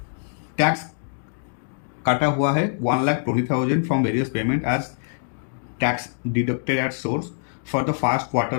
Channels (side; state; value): right; silent; digital silence